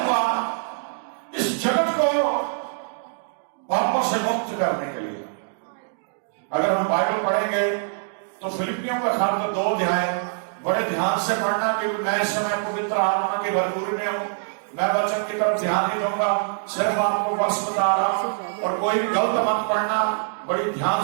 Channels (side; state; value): left; silent; digital silence